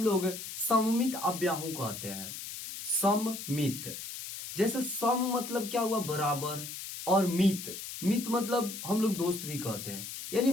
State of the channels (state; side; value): noise; left; hiss, 9 dB below the sound